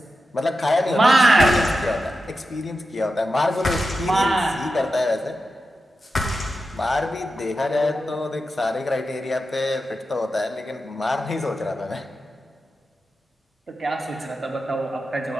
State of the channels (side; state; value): both; normal; correlation 0.91